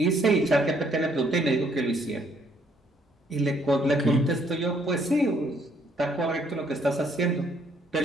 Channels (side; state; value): both; normal; correlation 0.67